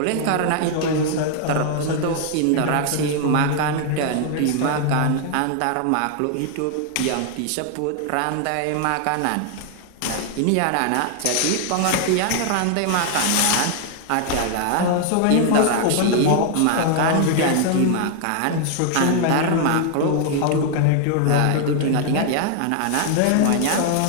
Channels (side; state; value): both; different; correlation 0.00